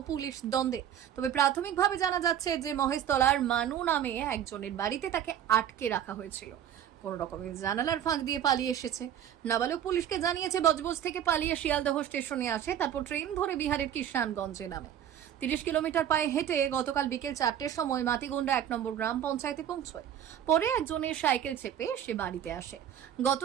পুলিশ দ্বন্দ্বে? তবে প্রাথমিকভাবে জানা যাচ্ছে যে মহেশতলার মানু নামে একজনের বাড়িতে তাকে আটকে রাখা হয়েছিল। কোন রকমের জানালার ফাঁক দিয়ে পালিয়ে এসেছে। নাবালক পুলিশকে জানিয়েছে বজবজ থেকে পালিয়ে শিয়ালদহ স্টেশনে আসে, তারপর ট্রেন ধরে বিহারের কিষানগঞ্জে নামে। ৩০ কিলোমিটার পায়ে হেঁটে গতকাল বিকেল ৪টের সময় মাতিগুন্ডা ১ নম্বর গ্রাম পঞ্চায়েতে পৌঁছয়। পরে একজনের সাইকেল চেপে সে বাড়িতে আসে। গত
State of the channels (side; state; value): left; quieter; 10.0 dB